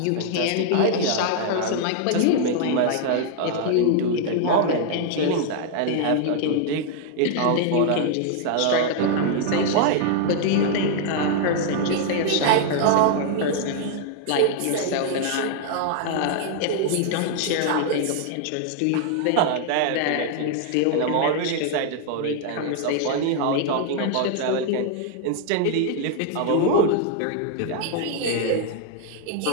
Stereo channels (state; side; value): different; both; correlation 0.00